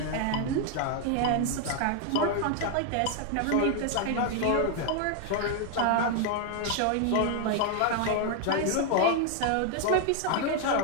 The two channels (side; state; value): both; different; correlation 0.00